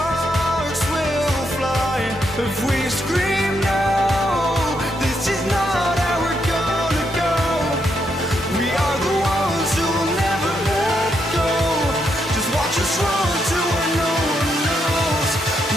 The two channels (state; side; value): normal; both; correlation 0.79